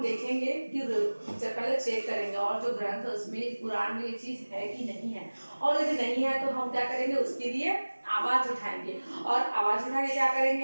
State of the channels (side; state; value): both; inverted; correlation -1.00